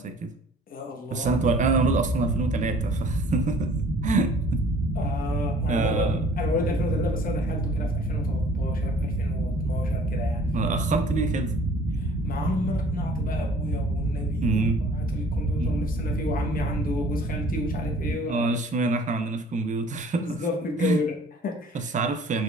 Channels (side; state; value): both; normal; correlation 0.52